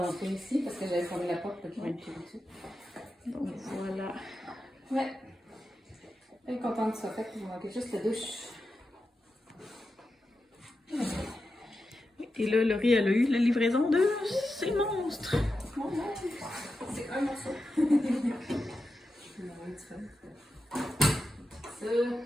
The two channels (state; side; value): normal; both; correlation 0.90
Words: ici parce que j'avais fermé la porte pour qu'ils rentrent dessus. Donc voilà. Ouais. Je suis contente que ça soit fait. Il manquait juste la douche. Et là, Laurie, elle a eu la livraison de ces monstres. C'est un morceau. Ça,